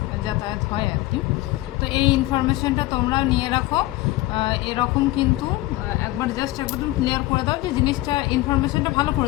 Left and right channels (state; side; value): quieter; right; 18.0 dB